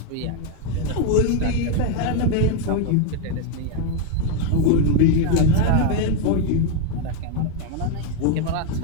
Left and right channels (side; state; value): both; different; correlation 0.01